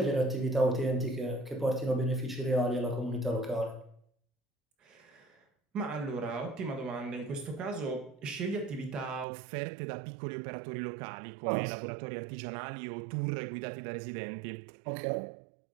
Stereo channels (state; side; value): drops out; left; at 9.2 s